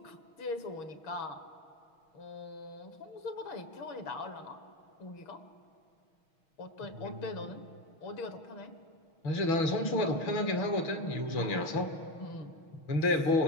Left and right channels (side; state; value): right; late; 6.3 ms